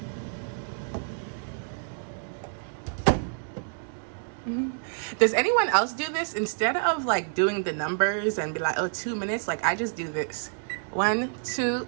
Does anyone else do this? Instead of like doing the numbers and be like, oh, 2 minutes, like I just do this. 1, 2,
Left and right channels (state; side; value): silent; left; digital silence